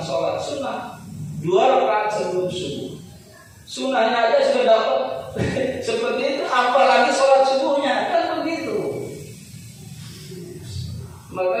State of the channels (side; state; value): both; identical; correlation 1.00